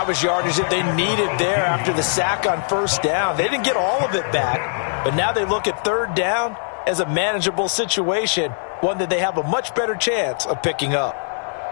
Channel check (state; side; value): silent; right; digital silence